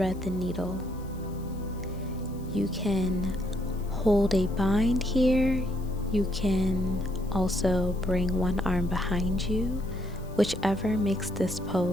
the needle. You can hold a bind here, you can Also, bring one arm behind you, whichever makes this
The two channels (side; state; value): left; noise; hiss, 26 dB below the sound